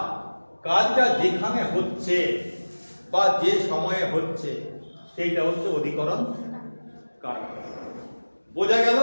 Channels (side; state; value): both; inverted; correlation -1.00